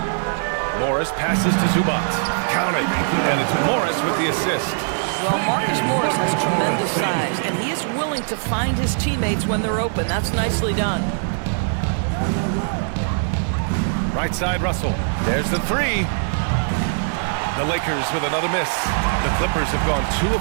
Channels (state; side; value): silent; left; digital silence